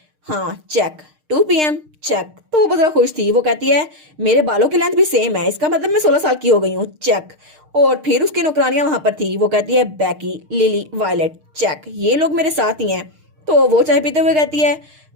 हाँ चेक, 2 PM चेक। तो वो बहुत जरा खुश थी। वो कहती है मेरे बालों की लेंथ भी सेम है, इसका मतलब मैं 16 साल की हो गई हूँ, चेक। और फिर उसकी नौकरानियां वहां पर थी। वो कहती है बैकी, लिली, वायलेट, चेक, ये लोग मेरे साथ ही हैं। तो वो चाय पीते हुए कहती है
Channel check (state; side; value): late; left; 6.5 ms